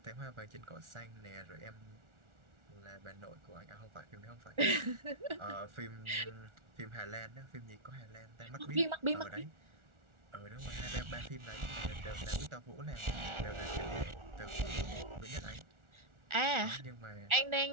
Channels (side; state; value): left; late; 1.4 ms